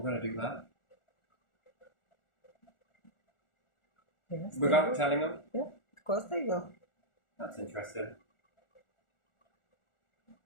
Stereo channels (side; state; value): right; late; 1.4 ms